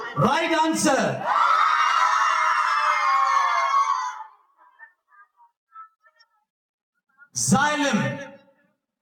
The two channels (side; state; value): both; identical; correlation 1.00